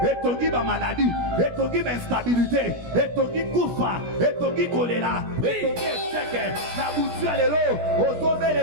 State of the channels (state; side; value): late; left; 17 ms